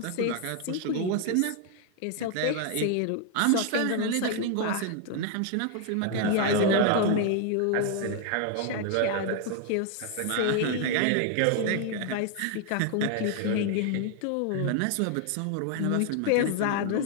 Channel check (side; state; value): both; different; correlation 0.00